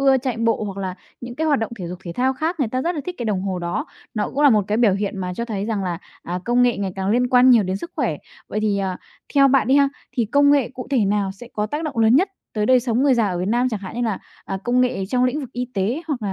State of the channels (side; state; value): both; identical; correlation 1.00